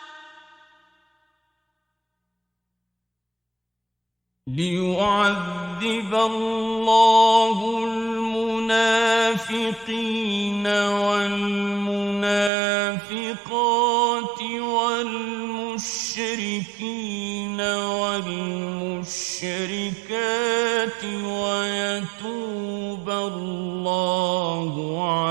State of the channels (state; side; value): drops out; left; at 12.5 s